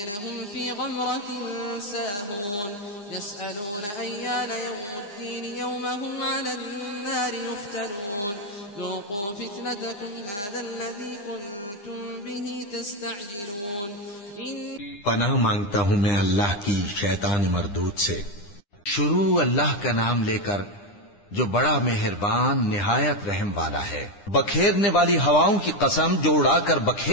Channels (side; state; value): right; late; 9.9 ms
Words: هم في غمرة ساهون يسألون أيان يوم الدين يوم هم على النار يفتنون ذوقوا فتنتكم هذا الذي كنتم به تستعجلون पनाह मांगता हूँ मैं अल्लाह की शैतान मरदूद से। शुरू अल्लाह का नाम लेकर जो बड़ा मेहरबान निहायत रहम वाला है। बखेरने वाली हवाओं की कसम जो उड़ाकर